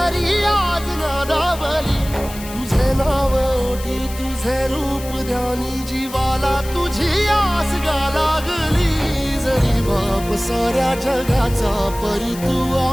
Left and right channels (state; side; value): noise; left; hiss, 14 dB below the sound